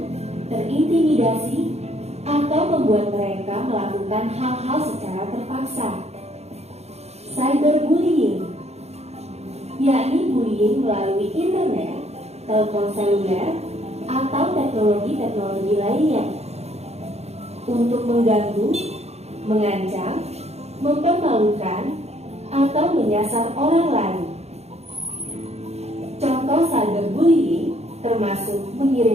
terintimidasi, atau membuat mereka melakukan hal-hal secara terpaksa. Cyberbullying, yakni bullying melalui internet, telepon seluler, atau teknologi-teknologi lainnya untuk mengganggu, mengancam, mempermalukan, atau menyasar orang lain. Contoh cyberbullying termasuk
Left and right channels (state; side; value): late; left; 0.31 ms